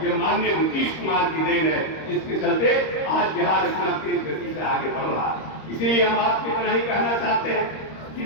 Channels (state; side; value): late; right; 26 ms